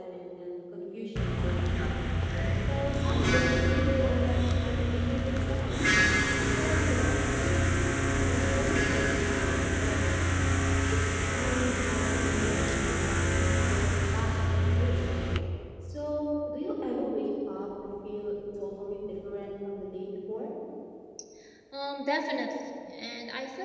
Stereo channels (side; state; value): both; identical; correlation 1.00